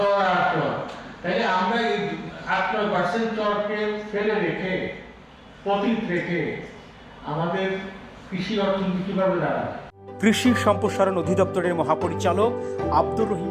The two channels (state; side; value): identical; both; correlation 1.00